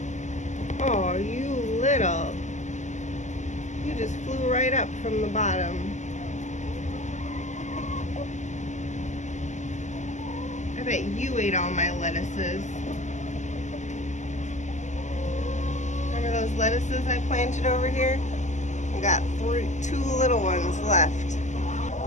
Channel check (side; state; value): right; late; 0.34 ms